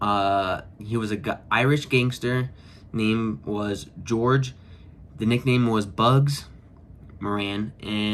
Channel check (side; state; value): both; identical; correlation 1.00